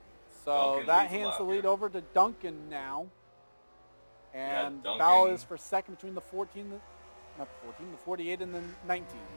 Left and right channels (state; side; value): inverted; both; correlation -1.00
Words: So Duncan that hands the lead over to Duncan now. And Duncan. Bell is for second between the 48 and the 19.